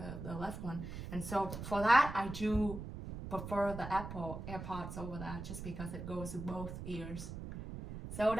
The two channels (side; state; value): right; noise; rumble, 8 dB below the sound